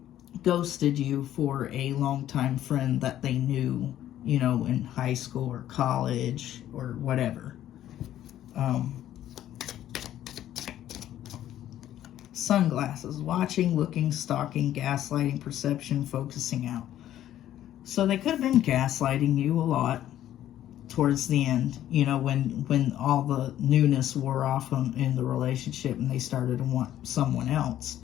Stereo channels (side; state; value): right; quieter; 12.2 dB